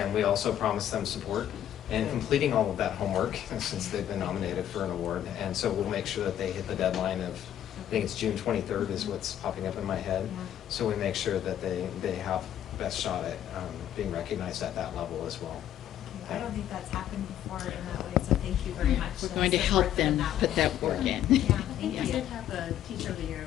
we also promised them support in completing all of that homework since they've been nominated for an award. And so we'll make sure that they hit the deadline of, I think it's June 23rd is what's popping up in my head. So we make sure that they have best shot at being recognized at that level as well. I don't think that's happened before in that way, so thank you very much. We're going to help them put that work in. Yeah, thank We you. did have a Teacher of the Year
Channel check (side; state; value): right; quieter; 11.1 dB